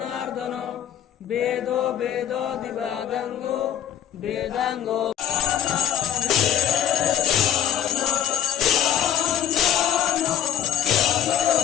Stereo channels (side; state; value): right; quieter; 10.1 dB